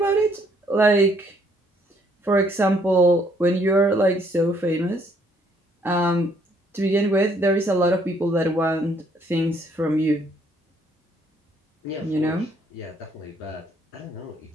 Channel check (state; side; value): normal; both; correlation 0.67